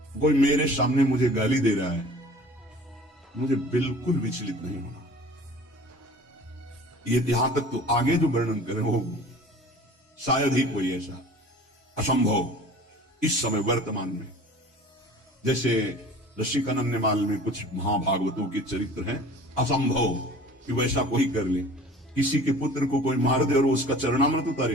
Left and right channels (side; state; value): both; normal; correlation 0.45